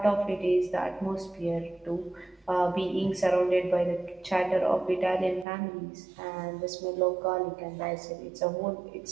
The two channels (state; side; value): drops out; left; at 5.5 s